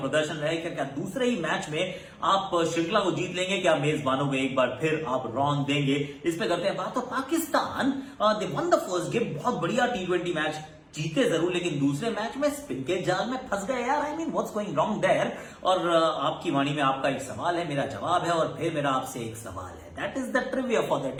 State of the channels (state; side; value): identical; both; correlation 1.00